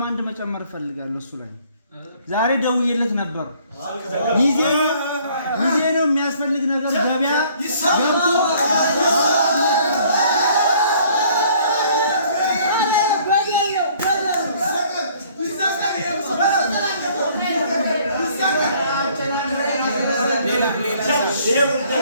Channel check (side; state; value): both; inverted; correlation -0.59